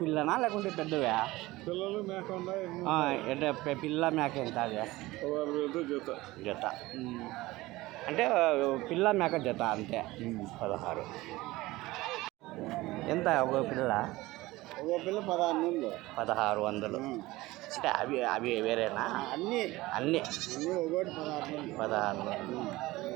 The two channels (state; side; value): quieter; left; 19.2 dB